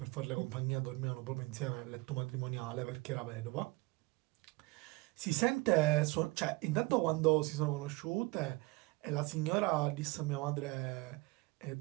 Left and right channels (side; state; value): left; quieter; 23.9 dB